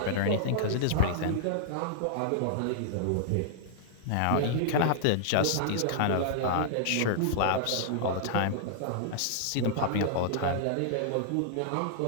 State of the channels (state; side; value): different; both; correlation -0.01